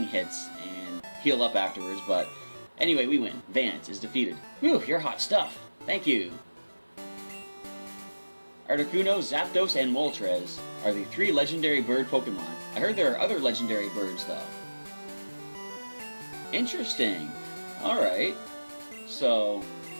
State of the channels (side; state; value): both; inverted; correlation -1.00